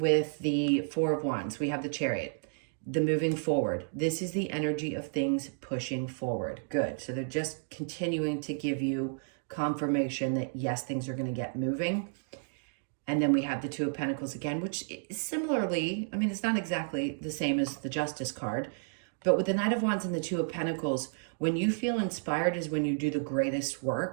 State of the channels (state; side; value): silent; left; digital silence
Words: the Four of Wands. We have the Chariot, the moving forward. This is the energy of things pushing forward. Good. So they're just continuing to give you confirmation that yes, things are going to get moving. And then we have the Two of Pentacles again, which is similarly, I mean, it's not exactly the same as the Justice card, but with the Knight of Wands and the Two of Pentacles, when you feel inspired is when you do the greatest